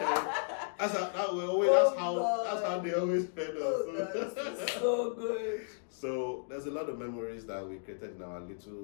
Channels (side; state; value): right; silent; digital silence